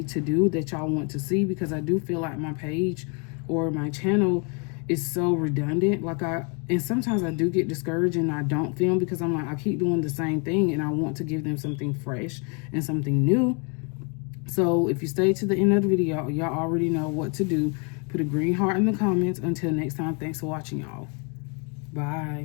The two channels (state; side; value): quieter; right; 35.5 dB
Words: to do, that y'all want to see, because I do feel like my page or my channel is so redundant. Like, and sometimes I do get discouraged and I don't film, because I'm like, I keep doing the same thing and I want to give them something fresh and something new. So if you stay to the end of the video, y'all already know what to do. Put a green heart in the comments. Until next time, thanks for watching, y'all.